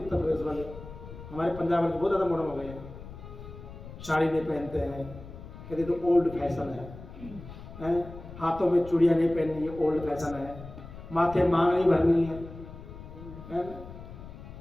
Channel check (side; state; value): left; noise; rumble, 14 dB below the sound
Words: प्रदेश वाले। हमारे पंजाब में बहुत ज्यादा मॉडर्न हो गए हैं, साड़ी नहीं पहनते हैं, कहते तो ओल्ड फैशन है। हाथों में चूड़ियां नहीं पहननी है, ओल्ड फैशन है। माथे मांग नहीं भरनी है,